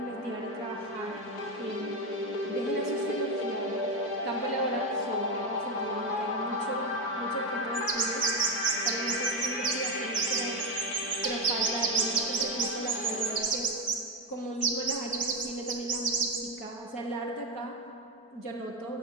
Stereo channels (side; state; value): right; late; 4.5 ms